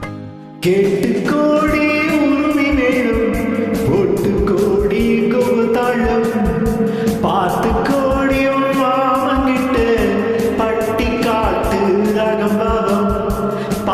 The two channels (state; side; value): identical; both; correlation 1.00